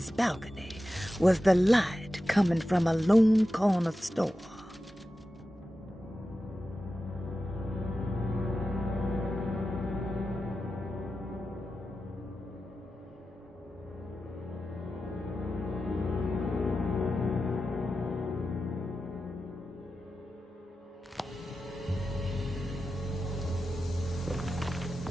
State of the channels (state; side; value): normal; both; correlation 0.92